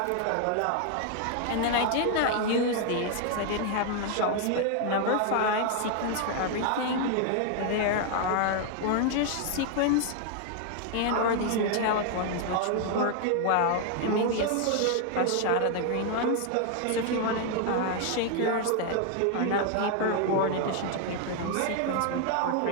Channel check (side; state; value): both; different; correlation 0.00